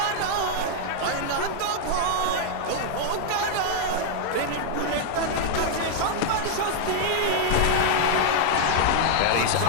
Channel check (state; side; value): different; both; correlation -0.01